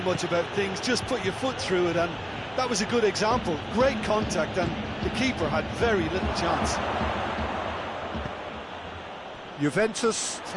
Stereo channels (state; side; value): identical; both; correlation 1.00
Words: much about things, just put your foot through it, and that was a good example. Great contact, and the keeper had very little chance. Juventus